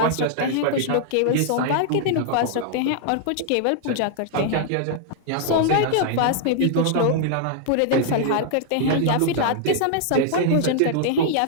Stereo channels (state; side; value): different; both; correlation -0.01